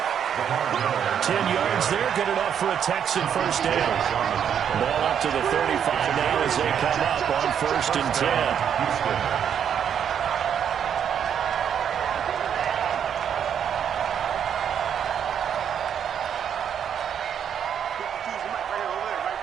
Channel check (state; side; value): quieter; left; 8.5 dB